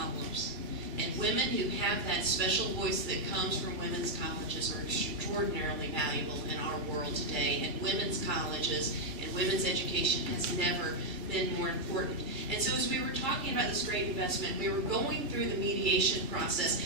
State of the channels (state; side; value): late; left; 2.3 ms